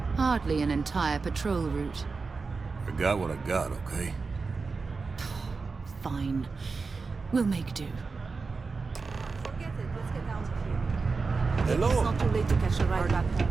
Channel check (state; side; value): quieter; left; 4.4 dB